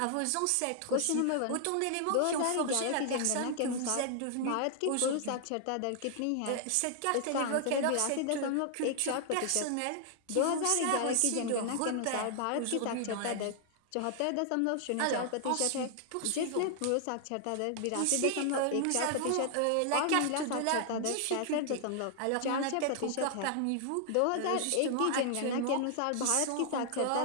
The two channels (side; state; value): both; different; correlation 0.00